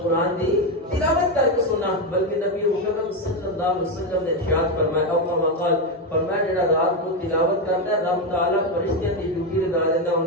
قرآن کی تلاوت کر کے سنا، بلکہ نبی مکرم صلی اللہ علیہ وسلم نے ارشاد فرمایا او کما قال، فرمایا جڑا رات کو تلاوت کرتا ہے رب تعالیٰ فرشتیاں دی ڈیوٹی لگا دیتا، ان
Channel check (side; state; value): both; normal; correlation 0.09